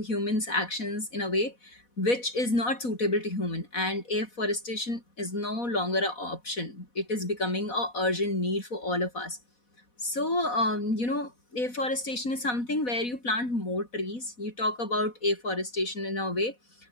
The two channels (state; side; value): late; right; 4.1 ms